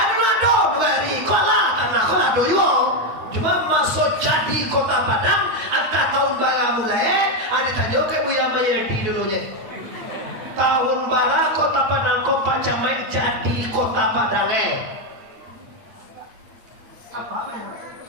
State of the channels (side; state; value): left; late; 8.6 ms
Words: ado hari, kota tanah kota ado yo. Cuma masuk jadi kota Padang, antara tahun bara mulai, ada tanya ke Buya Mayadi dulunya. Tahun bara kota Padang kok Pak Camai jadi kota Padang apa yang